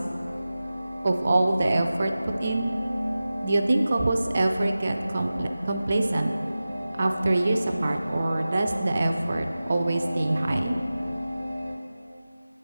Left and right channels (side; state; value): both; inverted; correlation -0.96